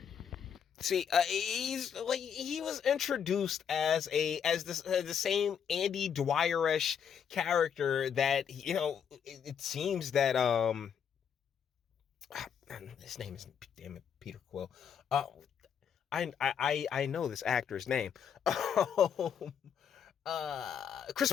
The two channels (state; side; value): quieter; right; 7.8 dB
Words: See, he was introduced as the same Andy Dwyer-ish character that, it seems that his name is, damn it, Peter Quill. I know this actor's name. Chris